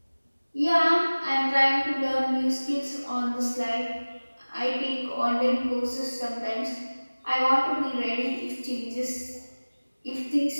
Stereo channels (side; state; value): both; inverted; correlation -1.00